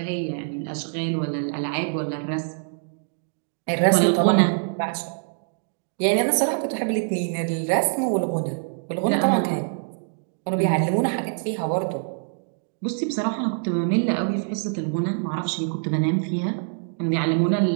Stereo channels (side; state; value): left; silent; digital silence